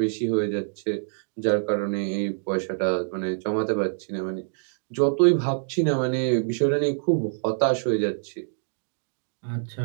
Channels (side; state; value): left; silent; digital silence